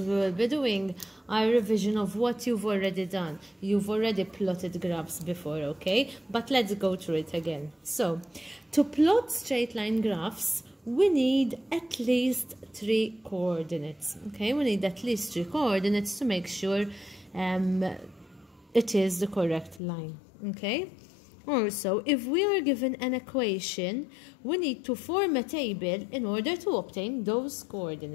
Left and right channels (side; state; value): right; drops out; at 19.8 s